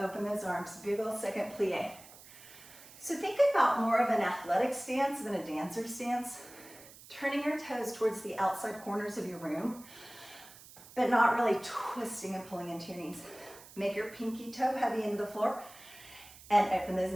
those arms. Big ol' second plie. So think about more of an athletic stance than a dancer stance. Turning your toes towards the outside corners of your room, but not really twisting and pulling into your knees. Make your pinky toe heavy into the floor and open those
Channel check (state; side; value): noise; right; hiss, 19 dB below the sound